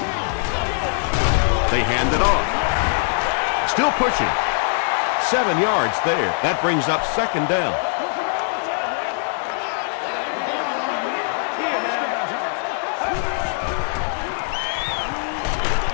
They hand it off. Still pushing. 7 yards there. That brings up 2nd down.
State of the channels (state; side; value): silent; right; digital silence